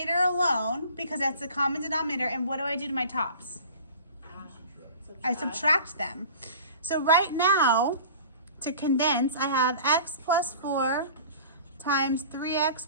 alone because that's the common denominator. And what do I do to my tops? I subtract them. So right now, to condense, I have x plus 4 times 3x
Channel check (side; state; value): both; inverted; correlation -0.42